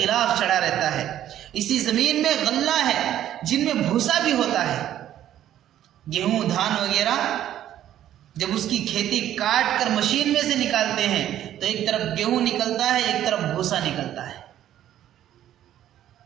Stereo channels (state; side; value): quieter; left; 11.8 dB